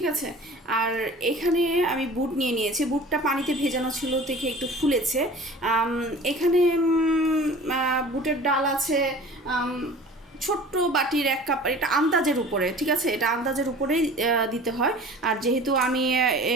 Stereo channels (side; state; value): both; normal; correlation 0.43